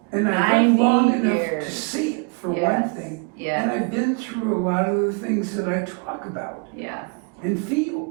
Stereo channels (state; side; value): quieter; left; 34.9 dB